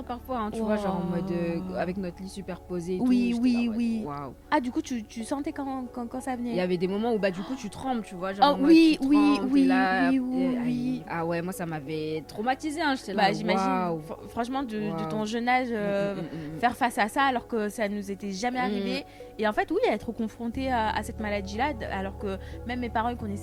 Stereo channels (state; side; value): identical; both; correlation 1.00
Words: parfois, hein, tu vois, genre en mode avec notre lit superposé. Et oui. Wow. Ah du coup tu sentais quand ça venait. Il y avait des moments où du coup tu trembles, tu vois, genre. Oh oui. Ah ouais, moi ça m'avait traumatisé, hein, j'étais là. Bah j'imagine. Franchement de ton jeune âge, faire face à ça alors que ça nous était jamais arrivé. Et en fait, oui, être confronté à cette maladie-là, alors que même mes parents ne